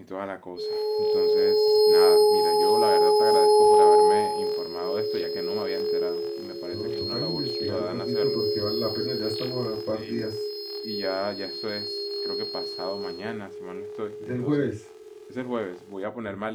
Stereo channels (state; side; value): identical; both; correlation 1.00